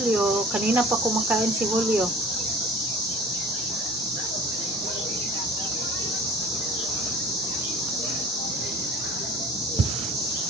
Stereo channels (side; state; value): both; normal; correlation 0.44